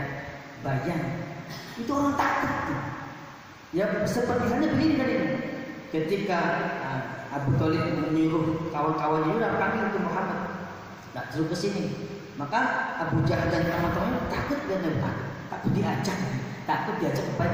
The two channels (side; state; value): both; identical; correlation 1.00